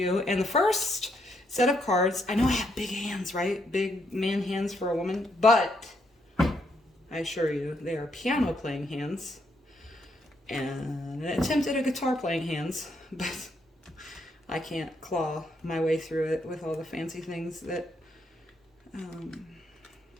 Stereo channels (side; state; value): both; normal; correlation 0.75